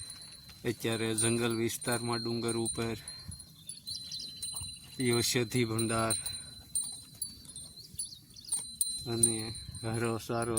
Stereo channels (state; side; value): identical; both; correlation 1.00